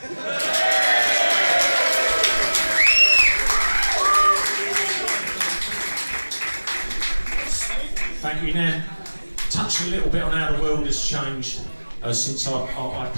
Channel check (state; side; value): inverted; both; correlation -1.00